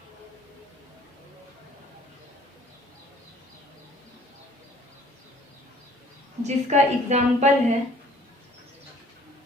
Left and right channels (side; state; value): both; normal; correlation 0.55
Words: जिसका एग्जाम्पल है